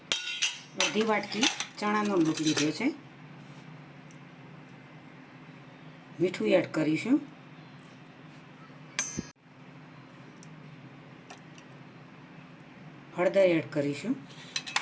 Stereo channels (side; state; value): both; identical; correlation 1.00